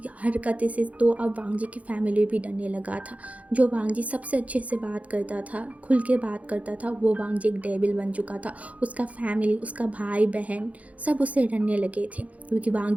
हरकतें से तो अब वांग जी की फैमिली भी डरने लगा था। जो वांग जी सबसे अच्छे से बात करता था, खुल के बात करता था, वो वांग जी एक डेविल बन चुका था। उसका फैमिली, उसका भाई बहन सब उससे डरने लगे थे, क्योंकि वांग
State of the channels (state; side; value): late; left; 0.068 ms